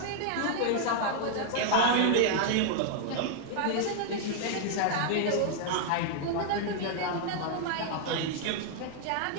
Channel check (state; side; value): different; both; correlation 0.00